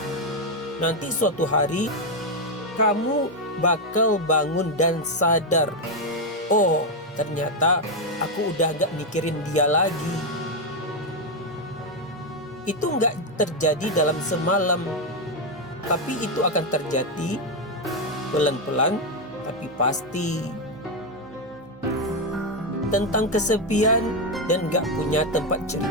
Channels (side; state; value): both; normal; correlation 0.05